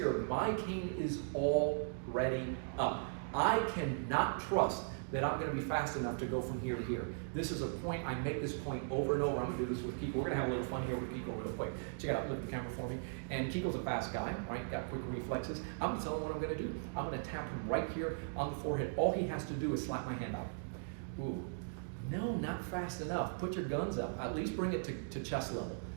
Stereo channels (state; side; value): silent; left; digital silence